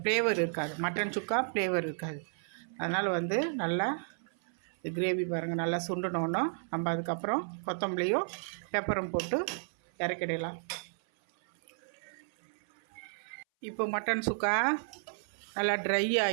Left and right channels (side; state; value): left; silent; 56 dB below the other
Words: ஃப்ளேவர் இருக்காது, மட்டன் சுக்கா ஃப்ளேவர் இருக்காது. அதனால் வந்து நல்லா கிரேவி பாருங்கள் நல்லா சுண்டணுன்னா நம்ம அதுக்கப்புறம் கொத்தமல்லியும் பெப்பரும் போட்டு இறக்கிடலாம். இப்போ மட்டன் சுக்கா நல்லா ட்ரை